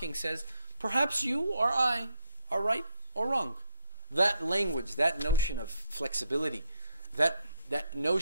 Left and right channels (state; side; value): inverted; both; correlation -0.76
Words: says, perhaps you or I are right or wrong. That language, that notion of flexibility, that